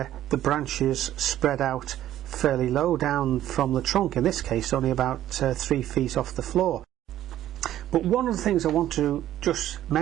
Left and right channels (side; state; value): left; quieter; 12.7 dB